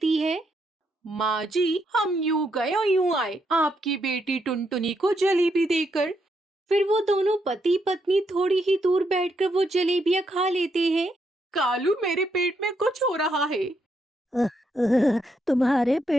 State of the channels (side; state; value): both; normal; correlation 0.78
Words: है। माँ जी, हम यूं गए और यूं आए आपकी बेटी टुनटुनी को जलेबी देकर। फिर वो दोनों पति पत्नी थोड़ी ही दूर बैठकर वो जलेबियाँ खा लेते हैं। कालू, मेरे पेट में कुछ हो रहा है। तुम्हारे